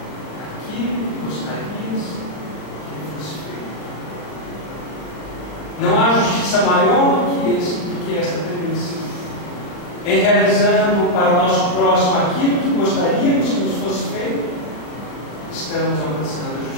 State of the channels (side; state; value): right; late; 40 ms